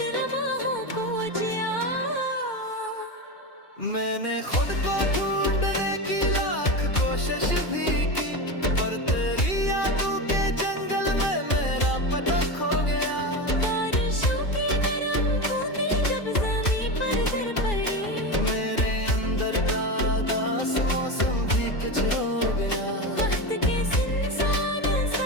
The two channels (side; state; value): right; late; 2.4 ms